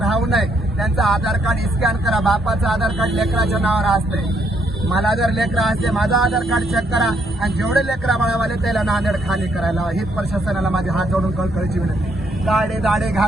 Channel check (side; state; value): both; normal; correlation 0.72